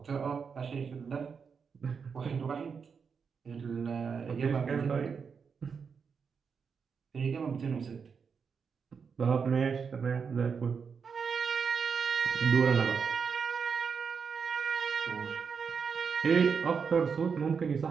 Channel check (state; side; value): quieter; left; 6.0 dB